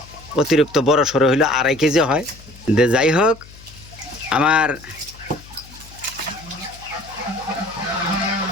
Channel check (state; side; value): noise; left; hum, 21 dB below the sound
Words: অতিরিক্ত বড় সড়ো হইলে 2.5 কেজি হয়। যাই হোক, আমার